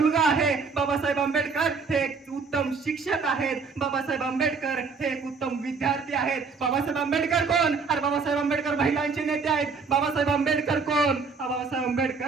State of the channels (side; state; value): left; quieter; 4.9 dB